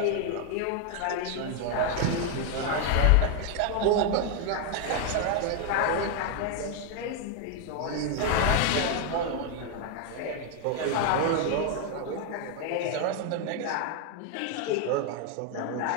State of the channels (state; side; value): different; both; correlation 0.01